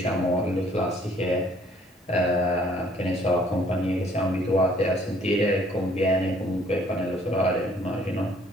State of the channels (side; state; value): both; normal; correlation 0.61